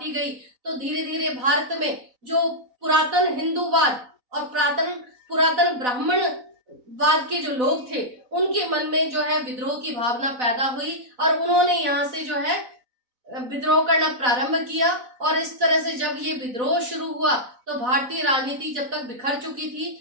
गई, तो धीरे धीरे भारत में जो पुरातन हिंदूवाद और पुरातन ब्राह्मणवाद के जो लोग थे उनके मन में जो है विद्रोह की भावना पैदा हुई और उन्होंने यहाँ से जो है विद्रोह करना प्रारंभ किया। और इस तरह से जब ये विद्रोह शुरू हुआ तो भारतीय राजनीति जब तक बिखर चुकी थी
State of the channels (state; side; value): late; left; 4.0 ms